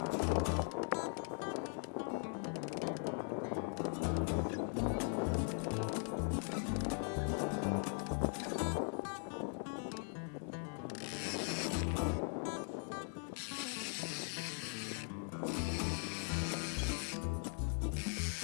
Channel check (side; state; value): right; silent; 51 dB below the other